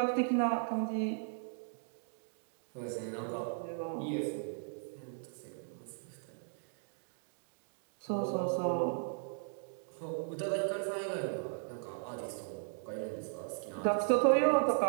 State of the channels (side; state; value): left; silent; digital silence